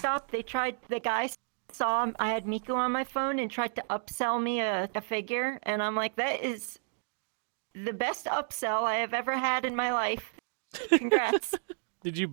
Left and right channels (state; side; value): silent; left; digital silence